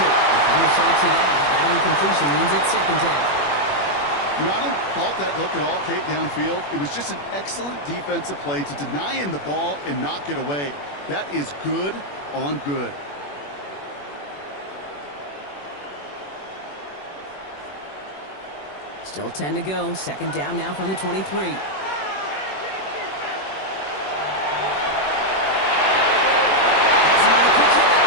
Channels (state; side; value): late; right; 21 ms